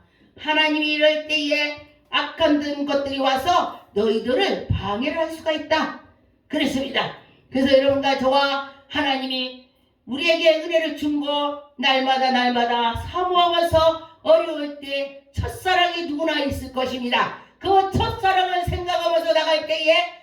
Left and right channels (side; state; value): both; identical; correlation 1.00